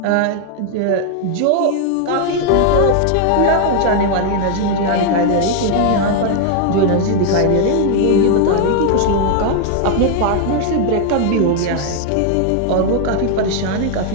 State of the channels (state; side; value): different; both; correlation 0.00